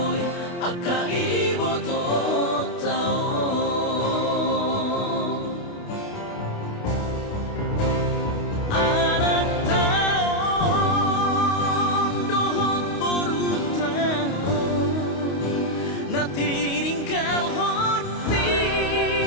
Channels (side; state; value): right; late; 28 ms